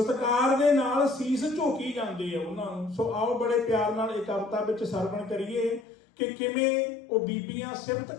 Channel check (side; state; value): right; drops out; at 5.9 s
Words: ਦੇ ਨਾਲ ਸੀਸ ਝੋਕੀ ਜਾਂਦੇ ਆ ਉਹਨਾਂ ਨੂੰ। ਸੋ ਆਓ ਬੜੇ ਪਿਆਰ ਨਾਲ ਇਹ ਕਵਿਤਾ ਵਿੱਚ ਸਰਵਣ ਕਰੀਏ ਕਿ ਕਿਵੇਂ ਉਹ ਬੀਬੀਆਂ ਸਿਫਤ